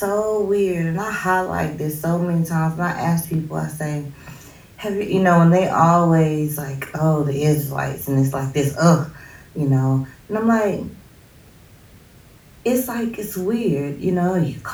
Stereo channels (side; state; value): both; identical; correlation 1.00